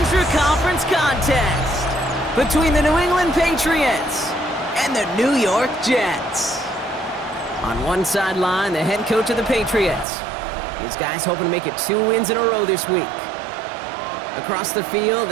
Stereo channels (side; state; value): left; drops out; at 10.1 s